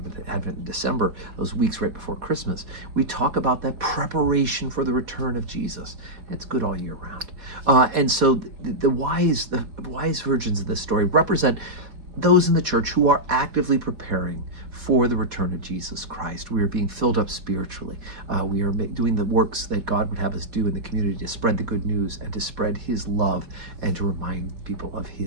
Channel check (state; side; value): late; left; 4.2 ms